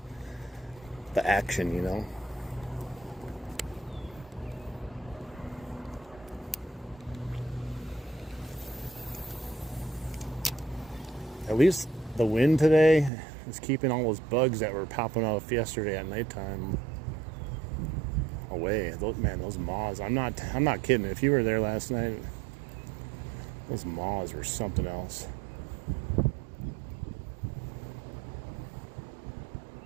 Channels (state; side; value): drops out; left; at 13.1 s